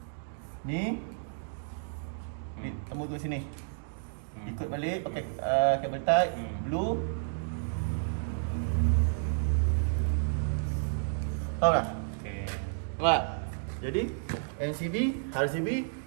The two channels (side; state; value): left; silent; digital silence